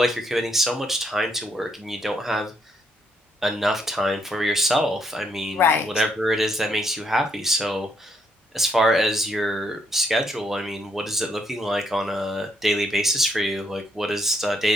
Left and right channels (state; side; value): normal; both; correlation 0.74